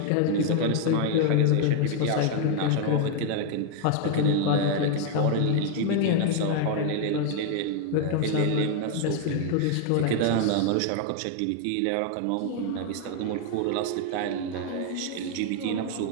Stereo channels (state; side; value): different; both; correlation 0.01